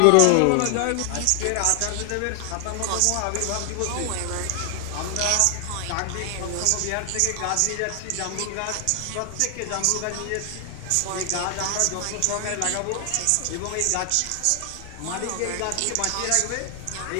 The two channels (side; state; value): both; different; correlation 0.00